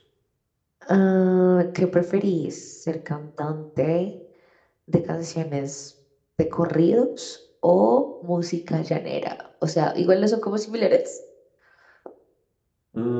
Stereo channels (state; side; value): identical; both; correlation 1.00